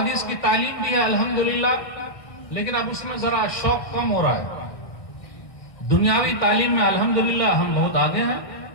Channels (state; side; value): late; right; 1.6 ms